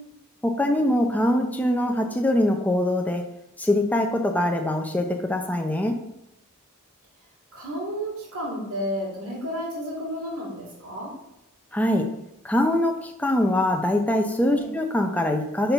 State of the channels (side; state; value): both; normal; correlation 0.74